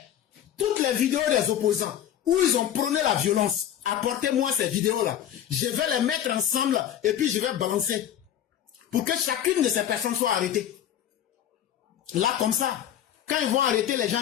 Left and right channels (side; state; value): right; quieter; 10.6 dB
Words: toutes les vidéos des opposants où ils ont prôné la violence, apportez-moi ces vidéos-là. Je vais les mettre ensemble et puis je vais balancer. Pour que chacune de ces personnes soit arrêtée. Là, comme ça, quand ils vont arrêter les gens